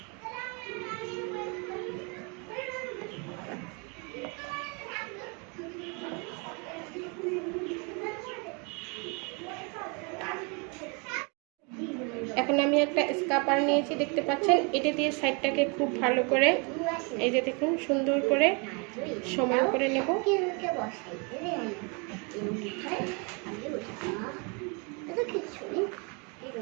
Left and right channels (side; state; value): left; quieter; 32.8 dB